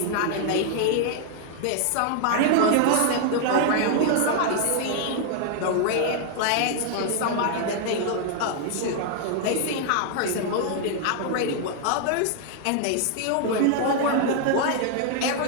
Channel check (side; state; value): both; different; correlation 0.00